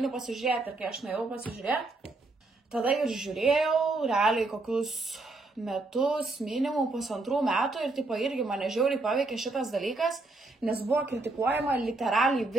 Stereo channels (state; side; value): quieter; left; 3.2 dB